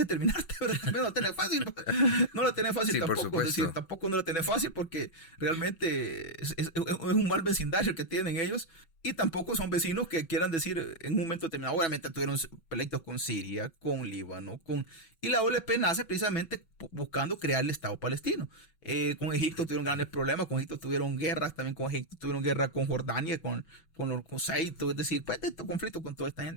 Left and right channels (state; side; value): late; right; 6.1 ms